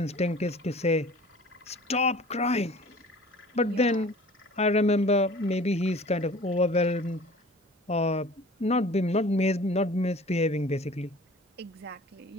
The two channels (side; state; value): both; normal; correlation 0.46